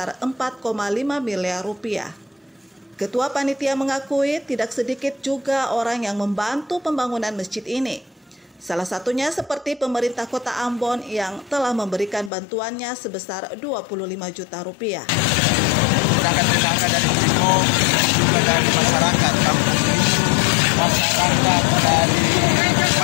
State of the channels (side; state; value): right; drops out; at 12.3 s